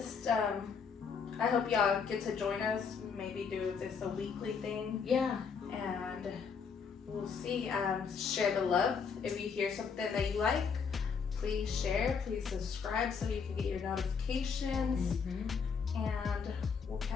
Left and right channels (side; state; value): right; quieter; 6.0 dB